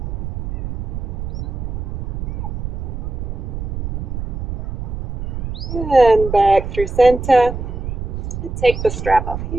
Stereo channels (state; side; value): noise; right; rumble, 5 dB below the sound